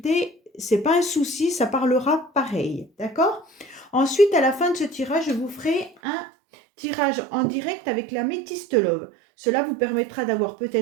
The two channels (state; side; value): drops out; left; at 6.0 s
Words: c'est pas un souci, ça parlera pareil, d'accord? Ensuite, à la fin de ce tirage, je vous ferai un tirage en direct avec la métiste love. Cela vous permettra d'avoir